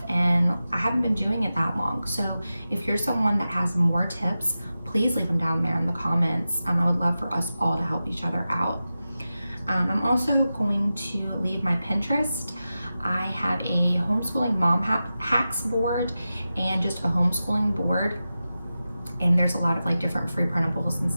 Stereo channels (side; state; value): both; inverted; correlation -0.93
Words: and I haven't been doing it that long. So if you're someone that has more tips, please leave them down there in the comments. I would love for us all to help each other out. I'm also going to leave my Pinterest. I have a homeschooling mom hacks board and just a homeschooling board. And there's a lot of like different free printables and